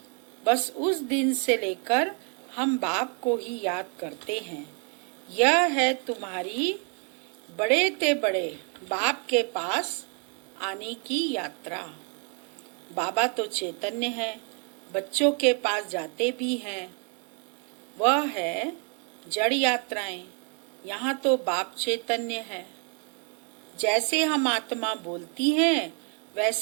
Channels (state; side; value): quieter; left; 37.4 dB